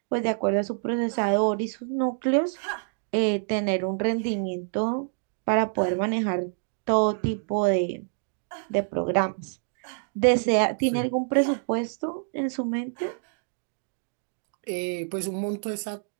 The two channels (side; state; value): left; silent; digital silence